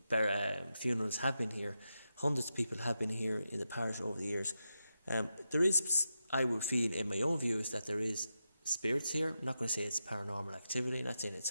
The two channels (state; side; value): inverted; both; correlation -0.88